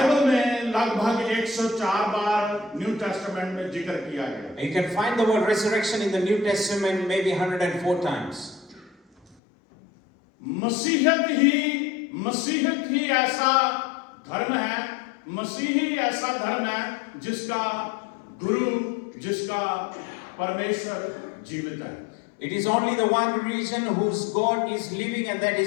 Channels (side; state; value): right; drops out; at 9.3 s